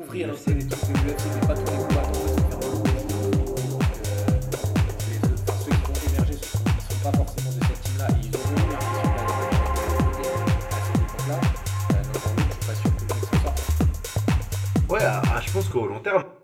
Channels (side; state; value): both; identical; correlation 1.00